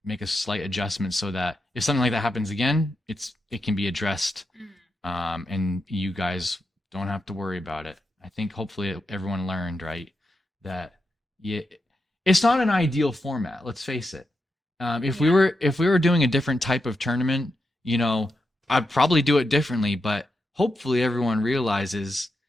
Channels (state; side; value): normal; both; correlation 0.86